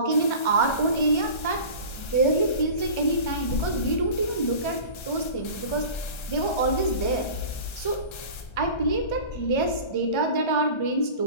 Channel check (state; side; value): late; right; 1.3 ms